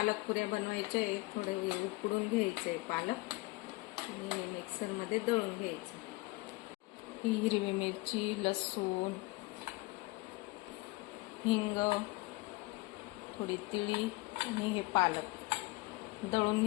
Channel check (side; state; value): right; quieter; 23.1 dB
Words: पुऱ्या बनवायच्या आहे. थोडं उकडून घ्यायचं आहे पालक आणि मिक्सरमध्ये दळून घ्यायचं. ही हिरवी मिरची, लसूण, हिंग, थोडी तिळी आणि हे पालक दळून